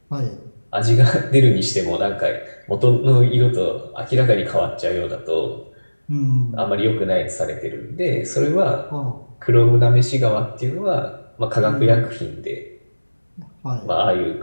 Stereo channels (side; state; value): both; inverted; correlation -1.00